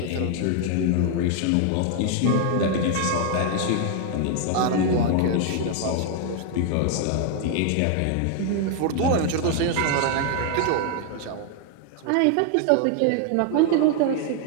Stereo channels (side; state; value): both; different; correlation 0.00